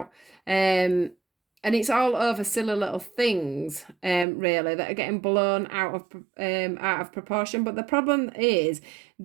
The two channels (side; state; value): left; drops out; at 4.2 s